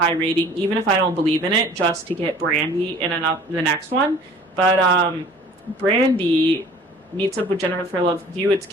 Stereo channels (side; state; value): both; normal; correlation 0.48